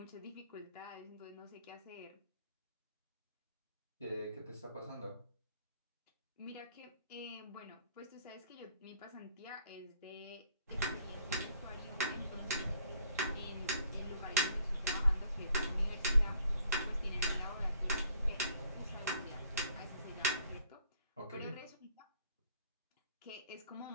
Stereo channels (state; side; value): inverted; both; correlation -0.63